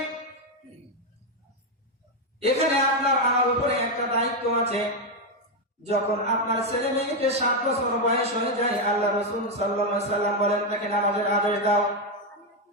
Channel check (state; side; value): normal; both; correlation 0.04